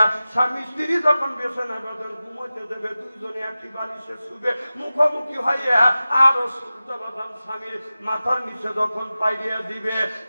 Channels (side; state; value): both; inverted; correlation -0.96